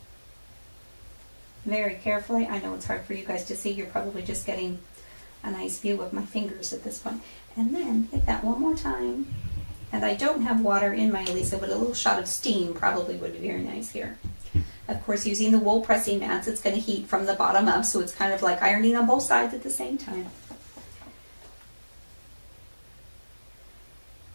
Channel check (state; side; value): inverted; both; correlation -1.00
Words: Very carefully. I know it's hard for you guys to see. You're probably just getting a nice view of my fingers at this point. And then hit that one more time. And I don't have water in my Elisa, but a little shot of steam probably would be very nice here. Of course, using the wool pressing mats, it's going to heat from the bottom up, so it's kind of like ironing on both sides at the same time.